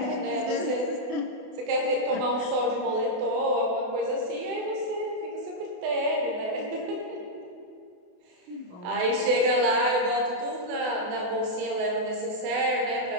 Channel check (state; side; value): late; left; 28 ms